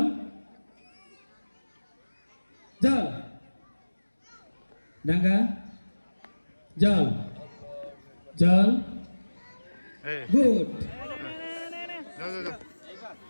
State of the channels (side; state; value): both; inverted; correlation -1.00